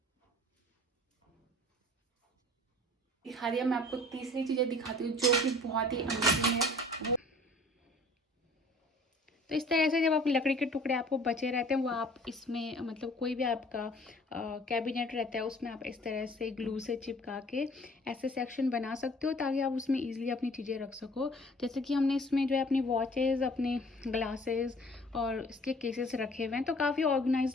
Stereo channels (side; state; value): both; normal; correlation 0.52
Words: दिखा दिया, मैं आपको तीसरी चीज़ें दिखाती हूँ जो कि बहुत ही अमेजिंग है। तो इस तरह से जब आप लकड़ी के टुकड़े आपको बचे रहते हैं वो आप इसमें, मतलब कोई भी आपका कैबिनेट रहता है उसमें आप इस तरह से ग्लू से चिपका के ऐसे सेक्शन बना सकते हो ताकि आप उसमें इजीली अपनी चीज़ें रख सको। जैसे कि हमने इसमें जो है अपनी वॉचेस, अपने ग्लासेस और इसके केसेस रखे हुए हैं, तो काफ़ी